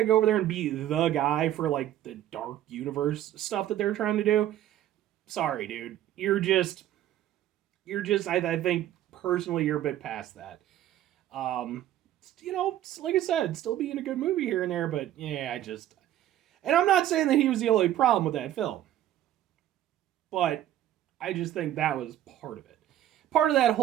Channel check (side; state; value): left; quieter; 12.4 dB